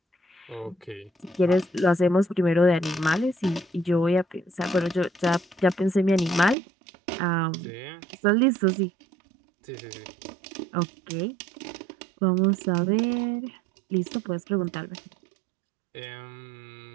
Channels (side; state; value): left; drops out; at 6.6 s